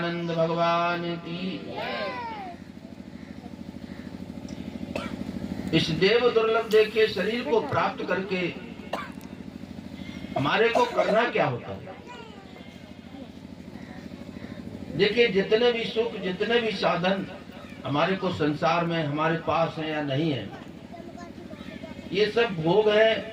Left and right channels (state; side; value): identical; both; correlation 1.00